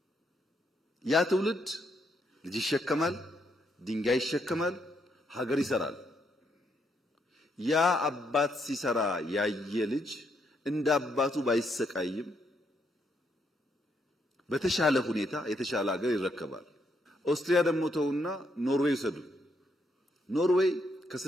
ያ ትውልድ ልጅ ይሸከማል፣ ድንጋይ ይሸከማል፣ ሀገር ይሰራል። ያ አባት ሲሰራ ያየ ልጅ እንደ አባቱ ባይሰቃይም በተሻለ ሁኔታ የተሻለ ሀገር ይረከባል። ኦስትሪያ ደግሞ ተውና ኖርዌይ ሰዱ። ኖርዌይ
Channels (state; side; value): normal; both; correlation 0.76